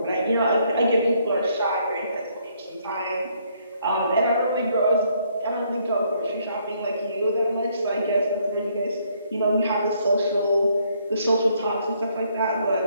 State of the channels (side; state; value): both; inverted; correlation -0.69